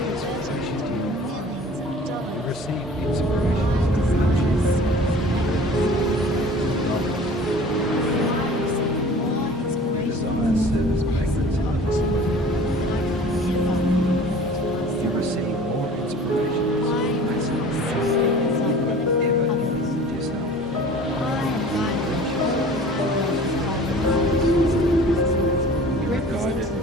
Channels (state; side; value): normal; both; correlation 0.45